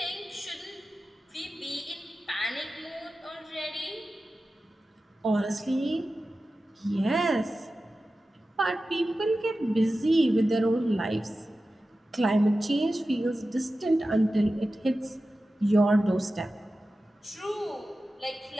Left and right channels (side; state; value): both; normal; correlation 0.94